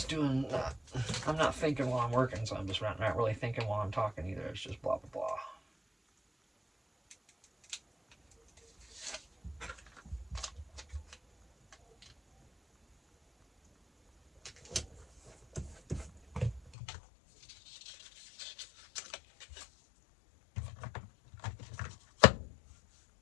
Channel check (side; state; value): right; drops out; at 16.7 s